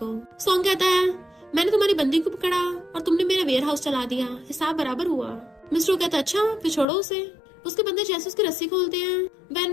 सॉन्ग कहता है मैंने तुम्हारी बंदी को पकड़ा और तुमने मेरा वेयर हाउस चला दिया, हिसाब बराबर हुआ। मिस्टर कहता है अच्छा फिर छोड़ो उसे। उसके बंदे जैसे उसकी रस्सी खोलते हैं,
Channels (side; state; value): right; drops out; at 6.9 s